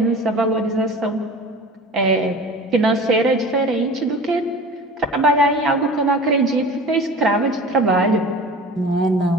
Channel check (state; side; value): normal; both; correlation 0.38